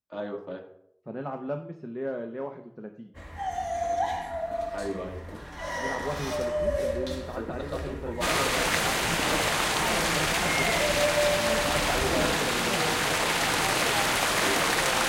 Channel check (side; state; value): both; identical; correlation 1.00